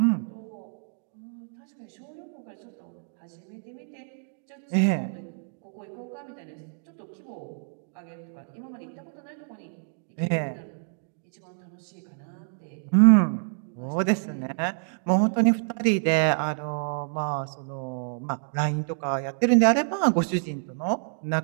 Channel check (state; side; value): silent; left; digital silence